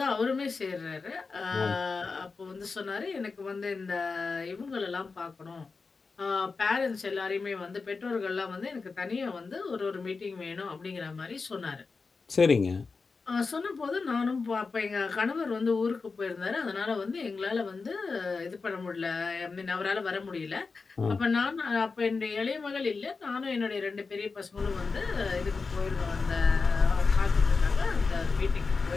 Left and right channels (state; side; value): quieter; right; 4.5 dB